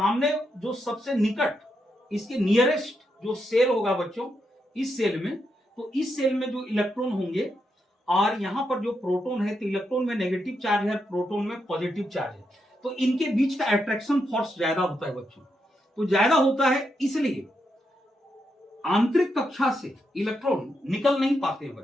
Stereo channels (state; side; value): normal; both; correlation 0.82